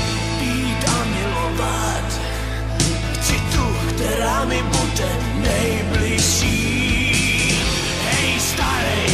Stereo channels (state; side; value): identical; both; correlation 1.00